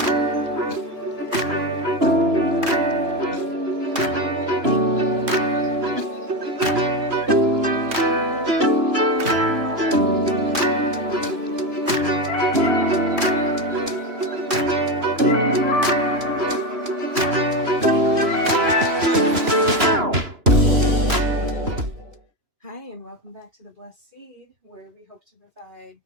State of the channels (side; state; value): left; late; 3.0 ms